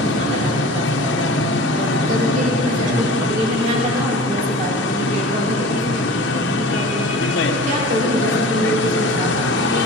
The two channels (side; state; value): both; normal; correlation 0.39